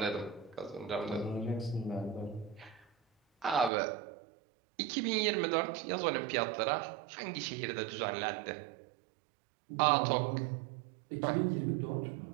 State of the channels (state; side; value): drops out; left; at 3.7 s